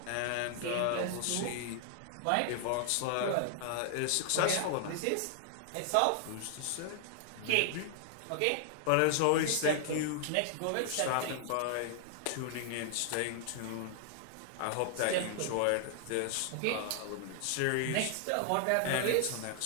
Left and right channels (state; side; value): different; both; correlation 0.00